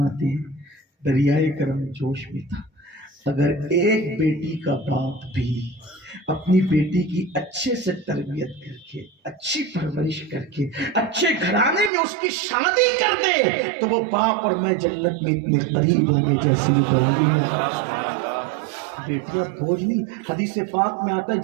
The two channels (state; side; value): drops out; left; at 11.9 s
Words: ہیں دریائے کرم جوش میں تھا، اگر 1 بیٹی کا باپ بھی اپنی بیٹی کی اچھے سے تربیت کر کے، اچھی پرورش کر کے، اچھے گھرانے میں اس کی شادی کر دے تو وہ باپ اور میں جنت میں اتنے قریب ہوں گے جیسے یہ 2 انگلیاں۔ بیٹیاں بوجھ نہیں، حدیث پاک میں آتا ہے